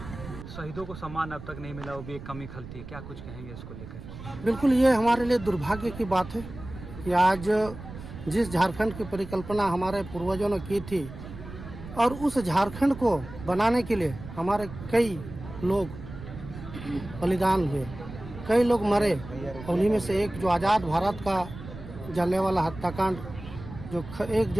शहीदों को सम्मान अब तक नहीं मिला, वो भी एक कमी खलती है। क्या कुछ कहेंगे इसको लेकर? बिल्कुल, ये हमारे लिए दुर्भाग्य की बात है कि आज जिस झारखंड की परिकल्पना हमारे पूर्वजों ने की थी और उस झारखंड को बनाने के लिए हमारे कई लोग बलिदान हुए, कई लोग मरे। उन्हीं में से एक जो आज़ाद भारत का जलियांवाला हत्याकांड जो 1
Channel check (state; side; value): noise; right; rumble, 13 dB below the sound